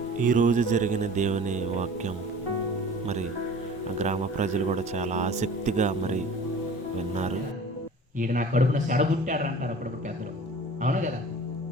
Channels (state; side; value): normal; both; correlation 0.43